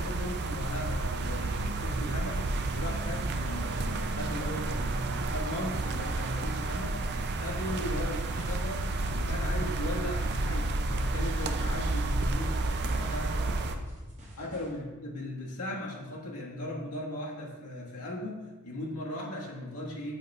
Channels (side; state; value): both; normal; correlation 0.65